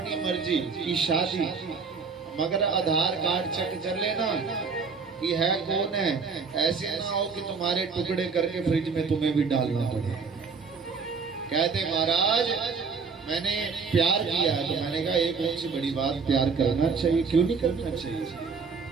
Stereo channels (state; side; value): quieter; left; 5.2 dB